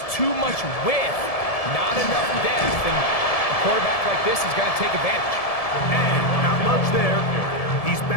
too much width, not enough depth, and a quarterback like this is going to take advantage. And not much there. He's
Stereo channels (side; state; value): right; late; 1.7 ms